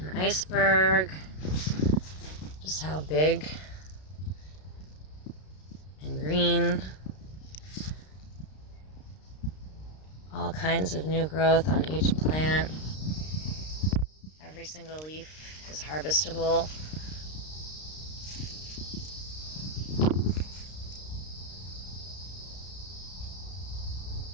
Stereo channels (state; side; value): late; right; 32 ms